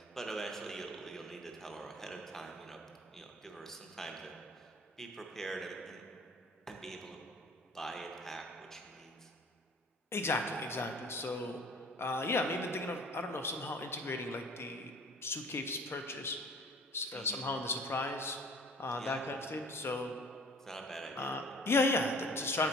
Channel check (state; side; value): normal; both; correlation 0.49